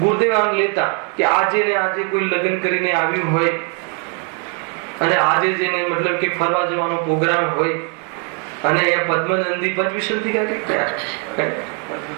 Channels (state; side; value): quieter; left; 39.1 dB